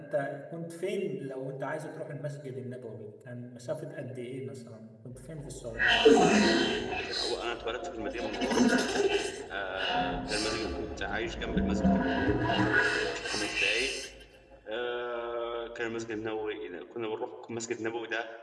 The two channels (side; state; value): both; identical; correlation 1.00